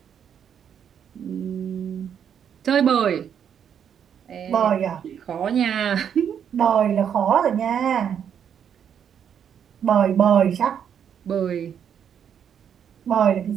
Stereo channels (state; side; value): quieter; left; 8.4 dB